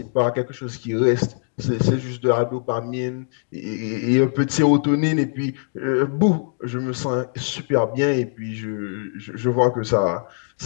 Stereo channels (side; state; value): right; silent; digital silence